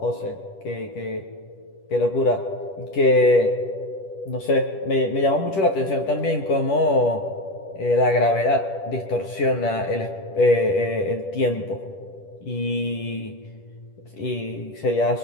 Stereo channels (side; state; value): right; late; 10 ms